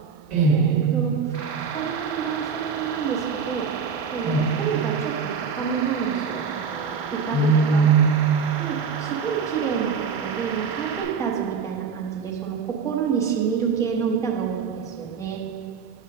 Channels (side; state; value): left; quieter; 5.9 dB